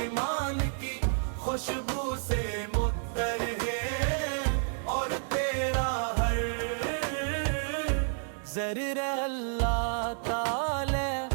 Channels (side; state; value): left; silent; digital silence